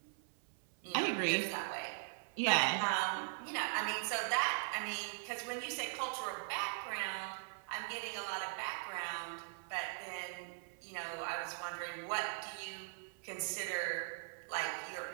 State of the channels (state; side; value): silent; left; 51 dB below the other